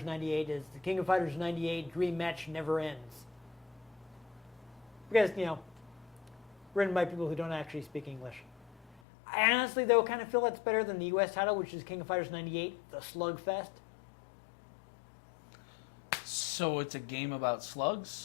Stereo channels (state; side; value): drops out; right; at 9.0 s